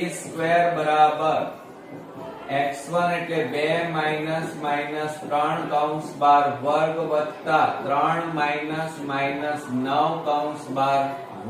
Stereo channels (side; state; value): both; identical; correlation 1.00